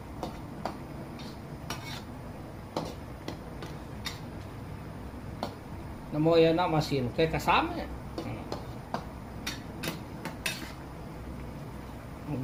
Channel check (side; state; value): both; identical; correlation 1.00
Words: Namo ya na masin kay kasama.